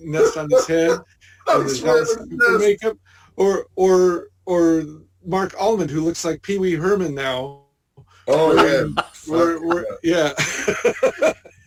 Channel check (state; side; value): identical; both; correlation 1.00